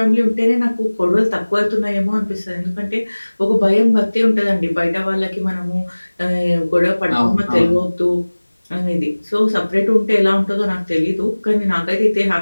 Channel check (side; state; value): both; inverted; correlation -1.00